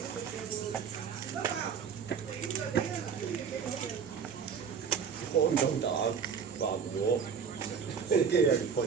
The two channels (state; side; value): quieter; left; 6.6 dB